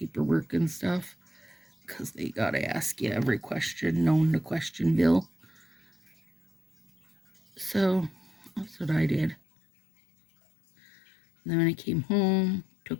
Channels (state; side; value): drops out; right; at 9.4 s